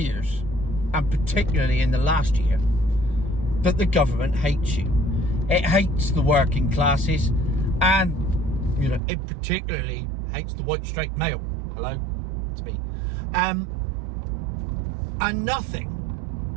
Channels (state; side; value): drops out; left; at 9.0 s